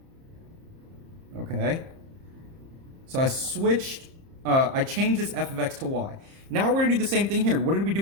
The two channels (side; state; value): left; late; 30 ms